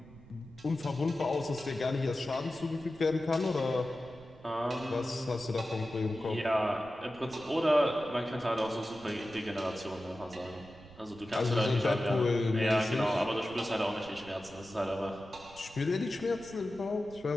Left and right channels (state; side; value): noise; right; rumble, 20 dB below the sound